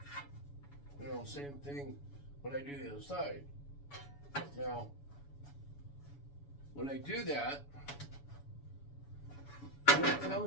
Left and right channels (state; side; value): late; right; 7.0 ms